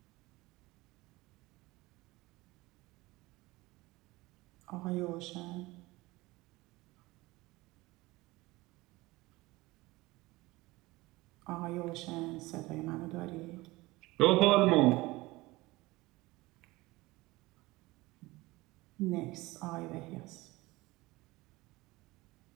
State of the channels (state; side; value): quieter; left; 20.1 dB